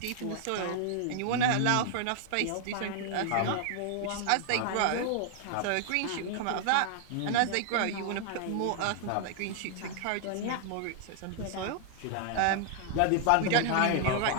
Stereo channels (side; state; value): both; different; correlation 0.00